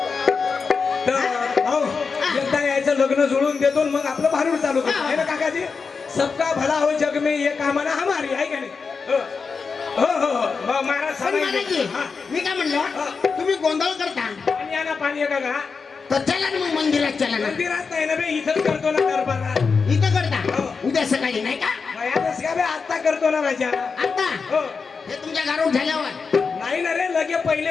तर भाऊ एकदा यायचं लग्न जुळून देतो आणि मग आपलं भारूड चालू करतो आहे ना काकाजी. सबका भला हो जग में ये कामना हमारी आहे का नाही? हो हो हो हो. महाराज पण महाराजजी सांगायचे. हा. मी काय म्हणलं तुम्ही गोंधळ करता पाणी आणा पाणी आहे का? तर चला ना मग मंदिरात चला ना मंदिरात नाही ना बे, इथंच करतो ना दरबारात. इथं करता हो. उद्या सकाळी नाही का वयातच का बे, आता करतो ना राजा. आता हो हे तुमच्या घरावर झाल्यावर नाही ना रे, लगे पहिले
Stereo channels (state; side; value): quieter; right; 5.1 dB